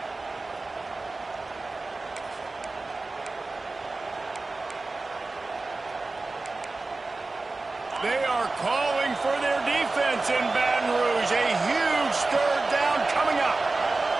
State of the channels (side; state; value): left; quieter; 3.4 dB